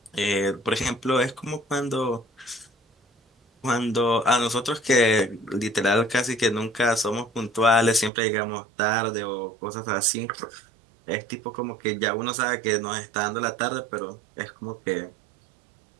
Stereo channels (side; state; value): left; drops out; at 8.1 s